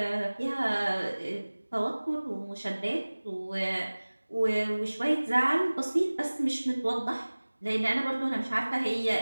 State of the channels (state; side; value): inverted; both; correlation -1.00